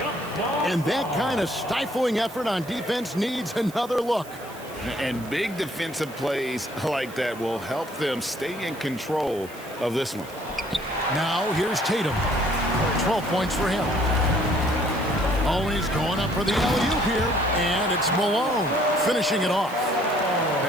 And that kind of stifling effort on defense needs another look. And big defensive plays like that will help them stay in control of this one. Now here's Tatum. 12 points for him. Oh, he's going up for the alley-oop here. And it's Malone finishing it off.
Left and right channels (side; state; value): right; noise; hiss, 20 dB below the sound